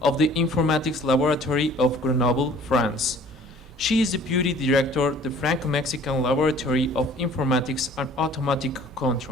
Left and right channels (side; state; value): both; normal; correlation 0.51